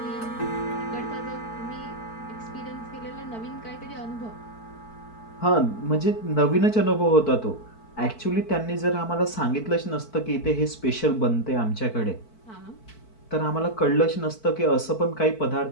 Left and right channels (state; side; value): late; right; 4.5 ms